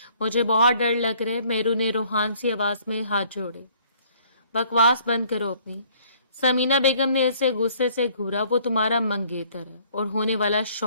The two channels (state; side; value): inverted; both; correlation -0.60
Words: मुझे बहुत डर लग रहा है। मेहरू ने रूहान सी आवाज में हाथ जोड़े। बकवास बंद करो अपनी। समीना बेगम ने इसे गुस्से से घूरा। वो तुम्हारा मंगेतर है और होने वाला